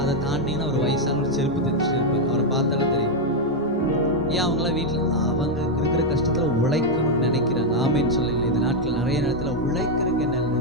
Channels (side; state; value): both; normal; correlation 0.01